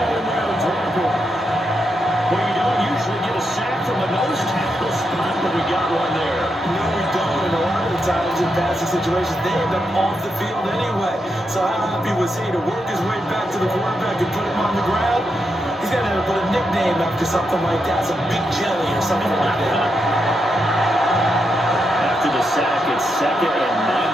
tackle. Well, you don't usually get a sack from a nose tackle spot, but we got one there. No, we don't. And a lot of the times in passing situations, they end up off the field anyway. So how happy was he to work his way back to the quarterback and put him on the ground? He's got to put a nickname after something like that, some Big Jelly or something like that. After the sack, it's 2nd and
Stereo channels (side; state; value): both; normal; correlation 0.83